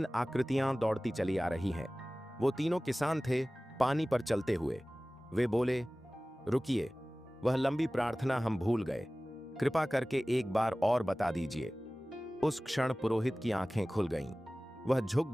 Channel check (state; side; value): normal; both; correlation 0.98